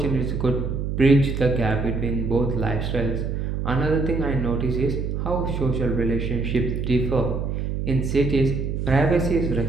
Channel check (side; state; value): right; noise; hum, 2 dB below the sound